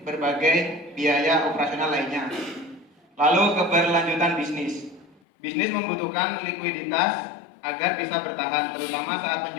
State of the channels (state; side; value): drops out; right; at 5.2 s